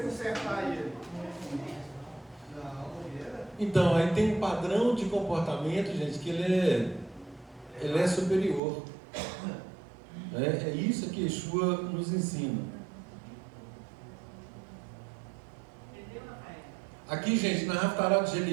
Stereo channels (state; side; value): drops out; left; at 8.6 s